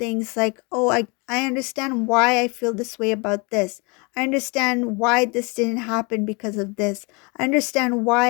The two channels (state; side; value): quieter; right; 30.3 dB